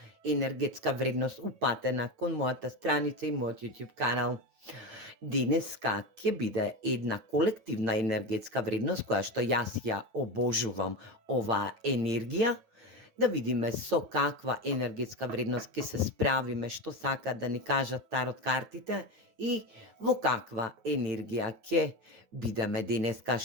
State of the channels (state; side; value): late; left; 8.9 ms